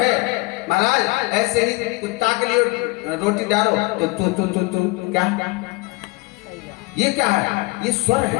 महाराज। ऐसे ही कुत्ता के लिए रोटी डालो तो तू क्या, ये क्या है, ये स्वर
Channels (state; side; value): quieter; right; 24.9 dB